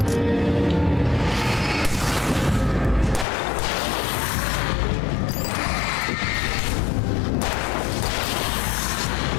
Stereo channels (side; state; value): right; drops out; at 3.2 s